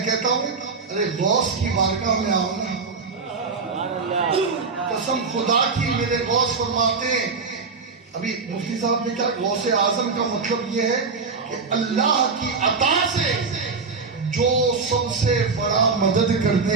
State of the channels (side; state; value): left; quieter; 4.7 dB